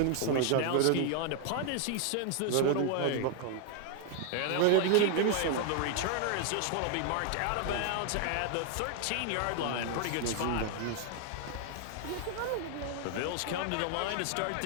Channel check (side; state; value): both; different; correlation 0.00